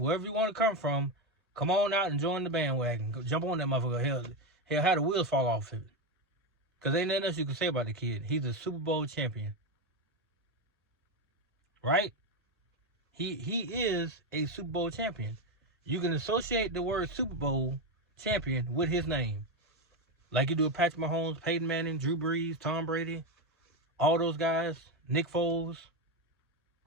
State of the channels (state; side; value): normal; both; correlation 0.11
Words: you want to come from. Come on out and join the bandwagon. Go jump on that motherfucker. Hell, how the wheels fall off of it. Because ain't nothing else you can say about the kid. He's a Super Bowl champion. Right? He is a Super Bowl champion. You can associate the word Super Bowl champion with his name. Like you do with Patrick Mahomes, Peyton Manning, Drew Brees, Tom Brady, all those guys, Nick Foles,